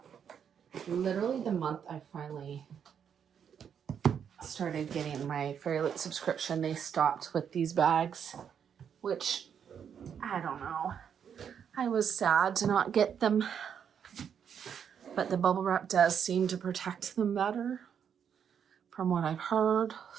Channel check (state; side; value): quieter; left; 7.9 dB